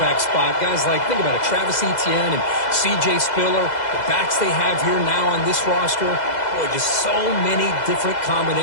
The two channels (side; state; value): right; late; 2.0 ms